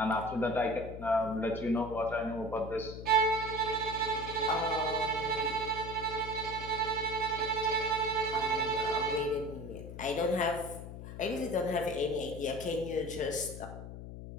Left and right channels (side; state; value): left; noise; hum, 10 dB below the sound